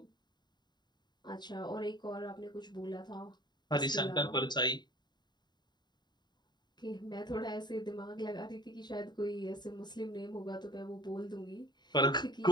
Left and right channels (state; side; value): late; right; 0.21 ms